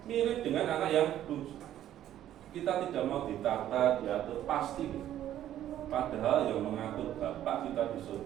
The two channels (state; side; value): quieter; left; 11.9 dB